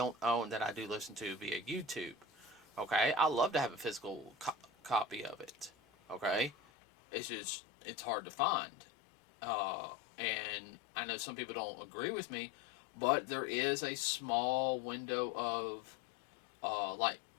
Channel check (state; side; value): drops out; right; at 6.6 s